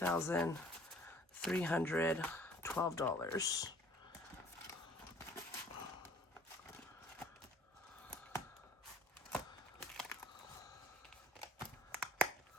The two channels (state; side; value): normal; both; correlation 0.54